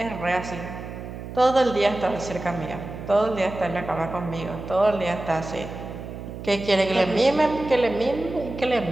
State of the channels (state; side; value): noise; right; hum, 10 dB below the sound